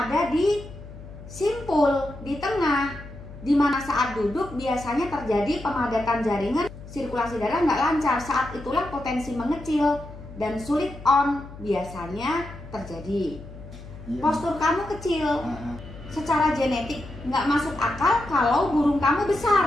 di simpul, di tengah, di mana saat duduk biasanya terjadi pemadatan jaringan, sirkulasi darah nggak lancar. Saat itulah potensi mengecil dan sulit on biasanya terjadi. Postur kamu kecil, secara genetik nggak masuk akal kalau burung kamu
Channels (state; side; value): noise; left; hum, 15 dB below the sound